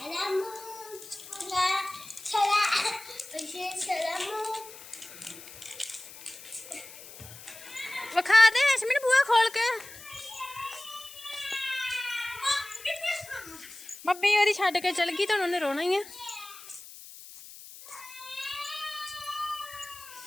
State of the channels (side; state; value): left; noise; hiss, 16 dB below the sound